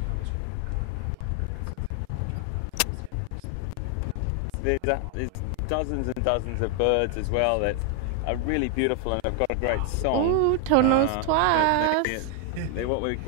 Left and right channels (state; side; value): different; both; correlation 0.00